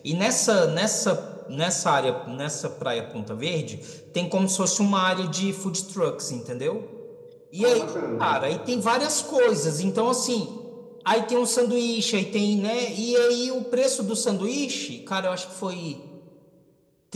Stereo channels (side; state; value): both; identical; correlation 1.00